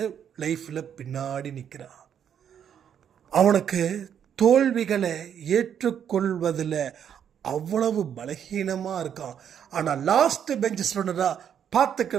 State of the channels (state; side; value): quieter; left; 8.7 dB